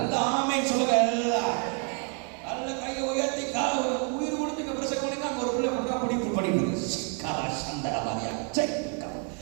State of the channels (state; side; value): quieter; left; 38.0 dB